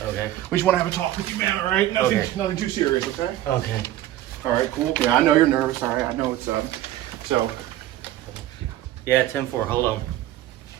Okay. We just want to have a talk with you, man. All right. Nothing, Okay. nothing too serious. Okay. Okay. All right. Cool. Yeah, I know you're nervous. All right. I know it's So. Yeah, 10-4. Hold on.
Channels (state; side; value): quieter; left; 13.8 dB